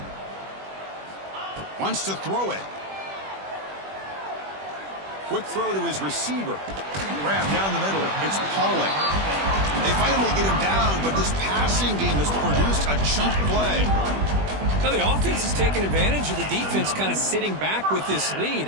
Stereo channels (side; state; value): left; late; 21 ms